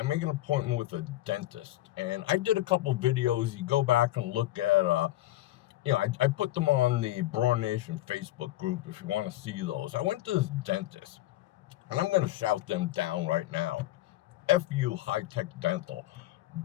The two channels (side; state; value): right; quieter; 15.7 dB